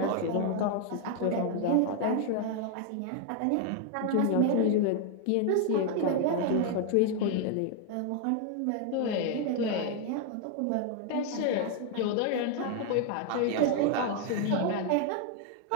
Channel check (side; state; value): both; different; correlation 0.00